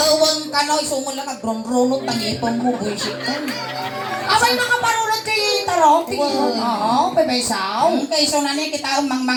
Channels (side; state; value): both; identical; correlation 1.00